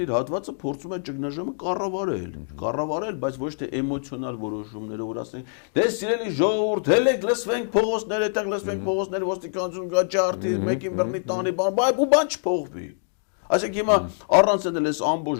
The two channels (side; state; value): right; silent; digital silence